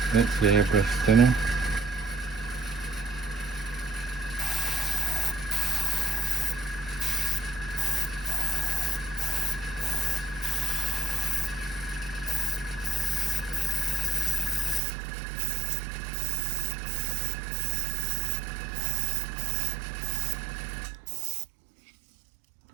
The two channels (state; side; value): drops out; left; at 14.8 s